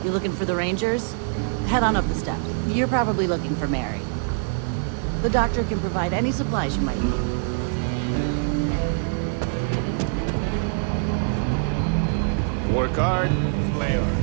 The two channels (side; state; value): left; silent; 63 dB below the other